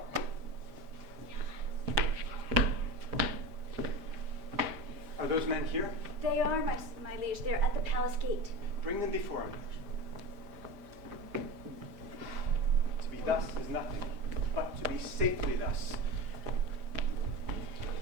Are those men here? They are, my liege. They're at the palace gate. Bring them before him. To be thus is nothing, but to be safely thus.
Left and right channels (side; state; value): left; late; 5.0 ms